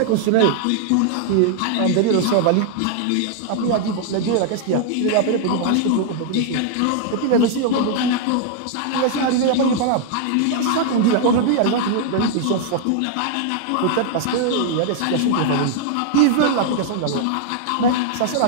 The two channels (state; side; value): different; both; correlation 0.00